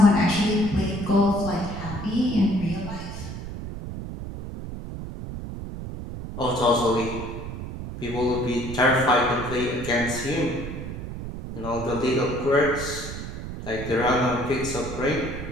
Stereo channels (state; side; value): noise; right; rumble, 8 dB below the sound